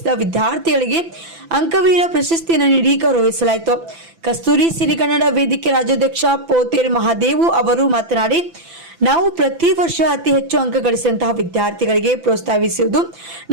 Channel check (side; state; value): left; late; 6.0 ms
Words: ವಿದ್ಯಾರ್ಥಿಗಳಿಗೆ ಅಂಕವೀರ ಪ್ರಶಸ್ತಿಯನ್ನು ನೀಡಿ ಗೌರವಿಸಲಾಯಿತು. ಕಸ್ತೂರಿ ಸಿರಿಗನ್ನಡ ವೇದಿಕೆ ರಾಜ್ಯಾಧ್ಯಕ್ಷ ಪೋತೇರ್ ಮಹಾದೇವು ಅವರು ಮಾತನಾಡಿ, ನಾವು ಪ್ರತಿ ವರ್ಷ ಅತಿ ಹೆಚ್ಚು ಅಂಕ ಗಳಿಸಿದಂತಹ ವಿದ್ಯಾರ್ಥಿಗಳಿಗೆ ಪ್ರೋತ್ಸಾಹಿಸುವುದು